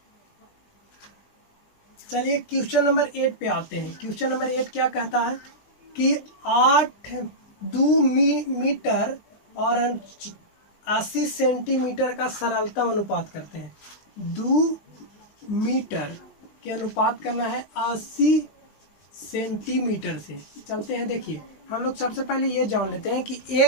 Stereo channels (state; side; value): late; right; 19 ms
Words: चलिए क्वेश्चन नंबर 8 पे आते हैं। क्वेश्चन नंबर 8 क्या कहता है कि 2 मीटर और 80 सेंटीमीटर का सरलतम अनुपात करते हैं। 2 मीटर के अनुपात करना है 80 सेंटीमीटर से। चलते हैं, देखिए हम लोग सबसे पहले ये जान लेते हैं कि